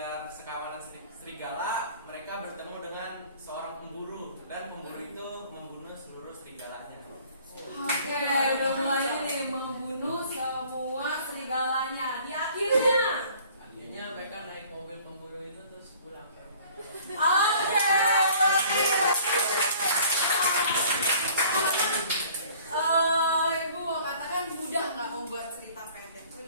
sekawanan serigala, mereka bertemu dengan seorang pemburu dan pemburu itu membunuh seluruh serigalanya. Oke, udah mulai nih membunuh semua serigalanya. Di Akhirnya mereka naik mobil pemburu itu terus pulang ke rumah. Oke, Ibu mau katakan mudah nggak membuat cerita pendek?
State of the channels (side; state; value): both; inverted; correlation -0.52